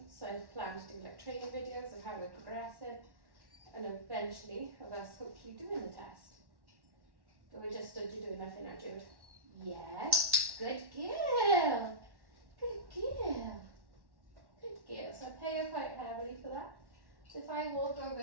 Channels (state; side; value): late; left; 1.1 ms